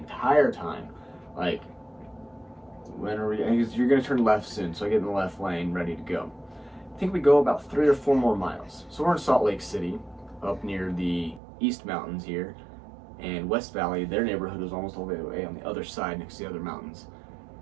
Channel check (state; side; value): drops out; left; at 11.4 s